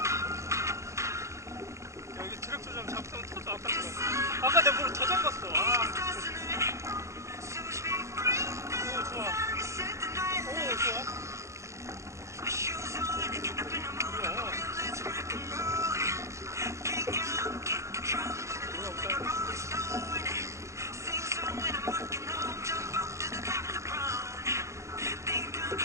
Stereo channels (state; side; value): late; left; 0.14 ms